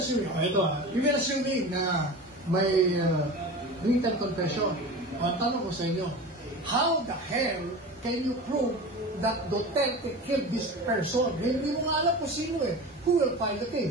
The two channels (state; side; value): normal; both; correlation 0.32